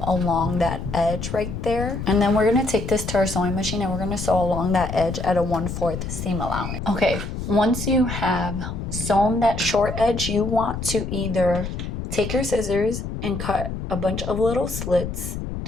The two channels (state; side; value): noise; left; rumble, 6 dB below the sound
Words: along that edge right there. And then we're gonna take this to our sewing machine and we're gonna sew along that edge at a 1/4 seam allowance. Okay, once you have sewn that short edge, you want to either take your scissors and cut a bunch of little slits